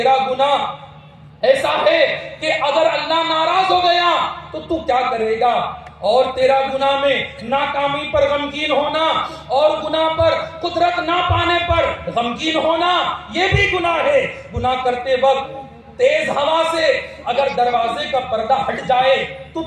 گناہ ایسا ہے کہ اگر اللہ ناراض ہو گیا تو کیا کرے گا؟ اور تیرا گناہ میں ناکامی پر غمگین ہونا اور گناہ پر قدرت نہ پانے پر غمگین ہونا یہ بھی گناہ ہے. گناہ کرتے وقت تیز ہوا سے اگر دروازے کا پردہ ہٹ جائے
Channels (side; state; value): both; identical; correlation 1.00